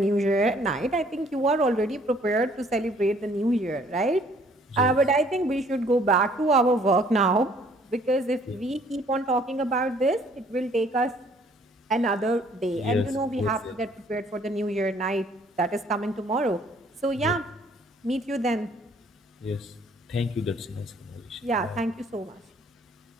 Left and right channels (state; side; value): normal; both; correlation 0.60